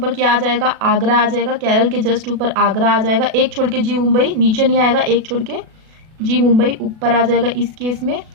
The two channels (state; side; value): late; left; 37 ms